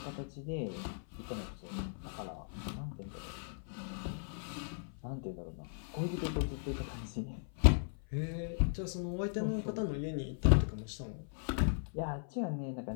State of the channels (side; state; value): right; silent; 53 dB below the other